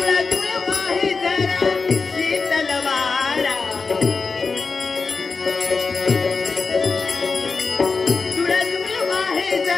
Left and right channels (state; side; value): quieter; right; 4.5 dB